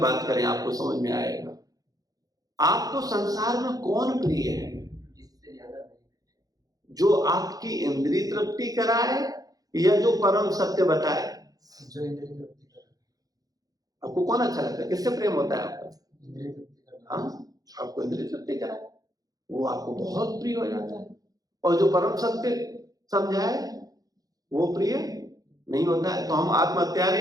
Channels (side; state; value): left; late; 0.18 ms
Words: करें, आपको समझ में आएगा। आपको संसार में कौन प्रिय है? जो आपकी इंद्रिय तृप्ति कराए या जो परम सत्य बताए? जो इंद्रिय तृप्ति कराए। आपको कौन अच्छा लगता है? किससे प्रेम होता है आपका? इंद्रिय तृप्ति। हाँ, आपको इंद्रिय तृप्ति कराए वो आपको बहुत प्रिय हो जाता है, और जो परम सत्य समझाए वो प्रिय नहीं होता है। तो हम